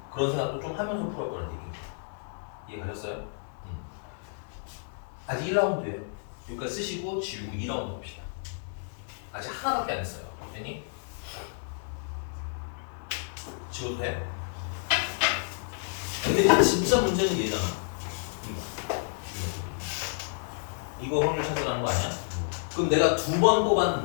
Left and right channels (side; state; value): right; silent; digital silence